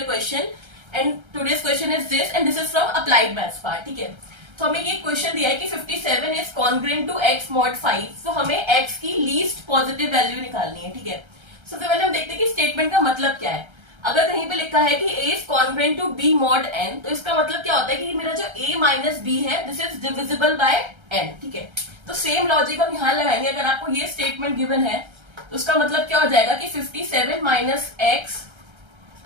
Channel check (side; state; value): left; late; 1.3 ms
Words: question and today's question is this and this is from applied maths part. ठीक है, तो हमें ये क्वेश्चन दिया है कि 57 is congruent to x mod 5। तो हमें x की लीस्ट पॉजिटिव वैल्यू निकालनी है। ठीक है, सबसे पहले हम देखते हैं कि स्टेटमेंट का मतलब क्या है। अगर कहीं पे लिखा है कि a is congruent to b mod n, तो इसका मतलब क्या होता है कि मेरा जो a माइनस b है this is divisible by n। ठीक है, तो सेम लॉजिक हम यहां लगाएंगे। अगर आपको ये स्टेटमेंट गिवन है तो उसका मतलब क्या हो जाएगा कि 57 minus x